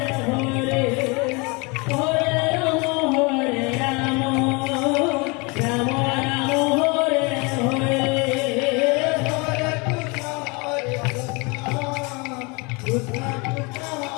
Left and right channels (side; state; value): right; quieter; 28.7 dB